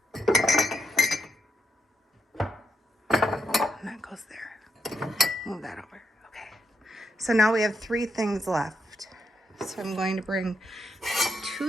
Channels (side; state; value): both; normal; correlation 0.79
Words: that goes there. Move that over. Okay. So now we have 3 things left. So I'm going to bring